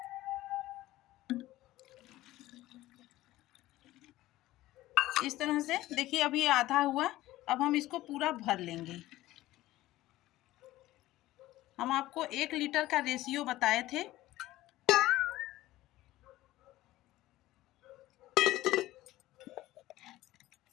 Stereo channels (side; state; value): right; quieter; 16.3 dB